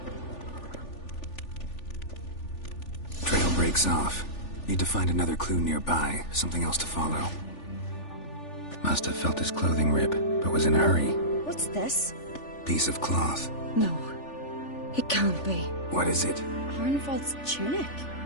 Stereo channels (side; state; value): right; late; 3.4 ms